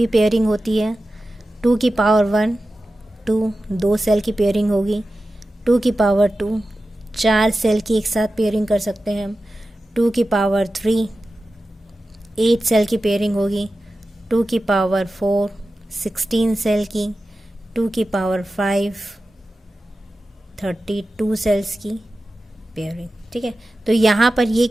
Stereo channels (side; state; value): both; normal; correlation 0.94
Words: पेयरिंग होती है। 2 की पावर 1 2 दो सेल की पेयरिंग होगी। 2 की पावर 2 4 सेल की एक साथ पेयरिंग कर सकते हैं हम। 2 की पावर 3 8 सेल की पेयरिंग होगी। 2 की पावर 4 16 सेल की। 2 की पावर 5 32 सेल्स की पेयरिंग। ठीक है। तो यहाँ पर ये